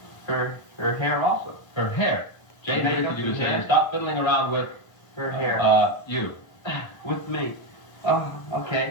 hair also. Her hair. Jane Makeup predicted you to and hair. say stop fiddling around with... Her hair. You. With me. Oh,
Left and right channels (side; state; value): right; late; 1.3 ms